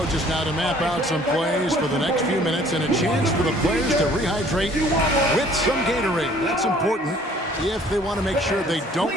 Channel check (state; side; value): normal; both; correlation 0.56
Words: now to map out some plays for the next few minutes and a chance for the players to rehydrate with some Gatorade. That's important if they want to make sure they